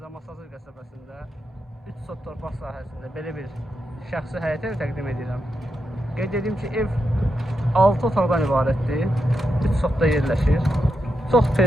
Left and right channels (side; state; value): both; normal; correlation 0.85